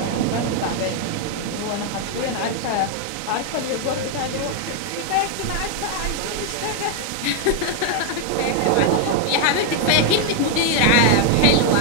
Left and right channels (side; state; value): both; different; correlation 0.00